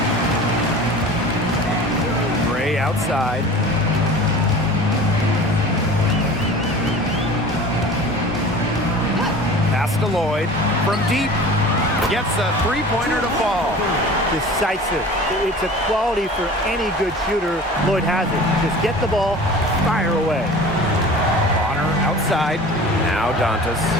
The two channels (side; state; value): both; normal; correlation 0.40